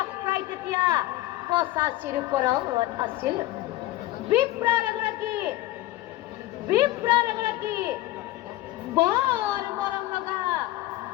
প্ৰায় তেতিয়া 85ৰ ওপৰত আছিল। বিপ্ৰৰ এগৰাকী বৰ মৰম লগা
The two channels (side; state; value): right; quieter; 16.4 dB